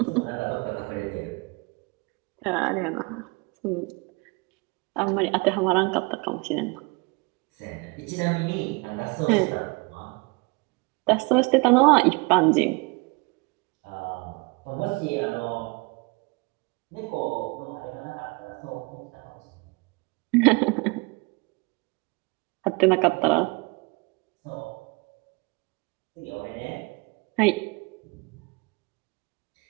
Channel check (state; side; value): quieter; left; 28.3 dB